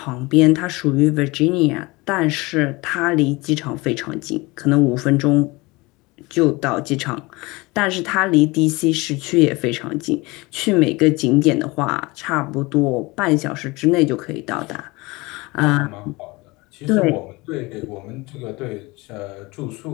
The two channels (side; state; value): right; quieter; 23.6 dB